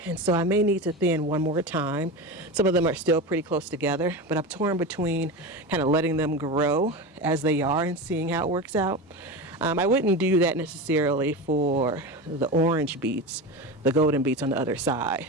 and so I may need to thin one more time. Some of them are still pretty close together, but I'm torn between kind of letting them grow as they are and seeing how it works out. I wouldn't do that necessarily for the orange beets, the golden beets on the other side,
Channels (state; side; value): normal; both; correlation 0.24